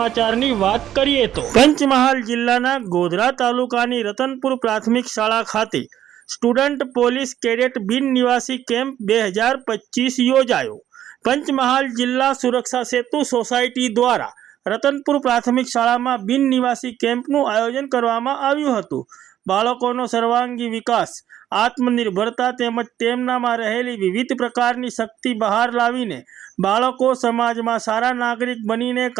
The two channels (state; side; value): quieter; left; 11.4 dB